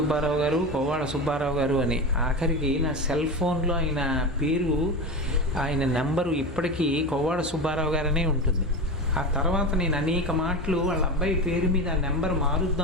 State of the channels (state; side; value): normal; both; correlation 0.23